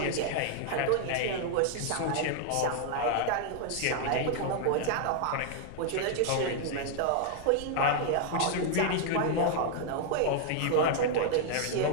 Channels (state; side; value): different; both; correlation 0.00